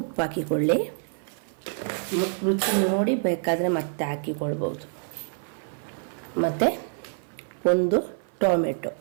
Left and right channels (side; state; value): left; silent; 56 dB below the other